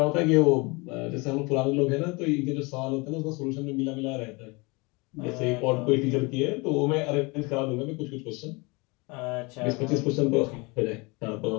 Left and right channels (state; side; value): quieter; right; 27.1 dB